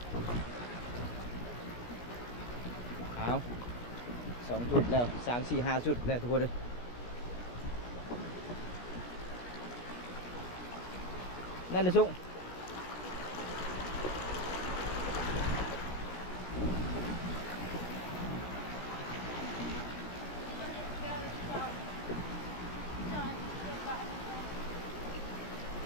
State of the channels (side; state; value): right; late; 17 ms